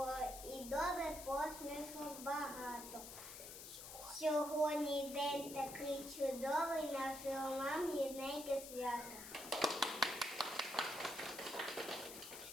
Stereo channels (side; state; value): left; noise; hiss, 10 dB below the sound